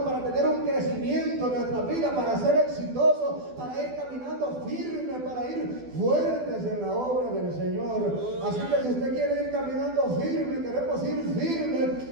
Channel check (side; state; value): left; late; 12 ms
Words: para tener un crecimiento en nuestra vida, para ser exitosos, para ir caminando firme, para ir fuertes en la obra del Señor. Así que si usted quiere ir caminando firme, queremos ir firme,